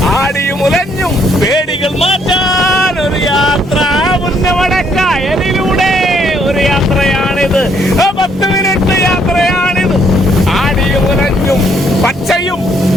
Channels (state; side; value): normal; both; correlation 0.70